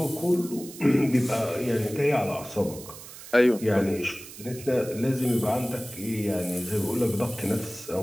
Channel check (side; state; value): right; noise; hiss, 15 dB below the sound